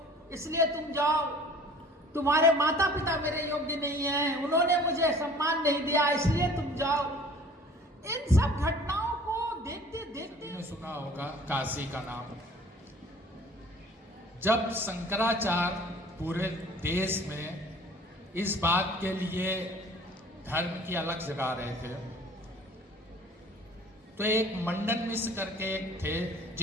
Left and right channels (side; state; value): both; normal; correlation 0.49